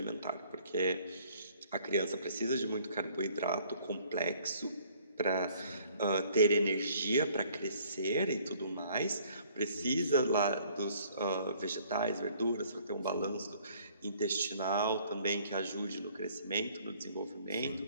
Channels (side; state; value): both; inverted; correlation -0.59